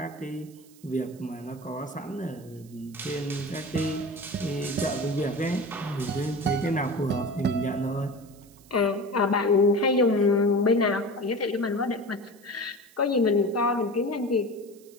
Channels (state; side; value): noise; right; hiss, 26 dB below the sound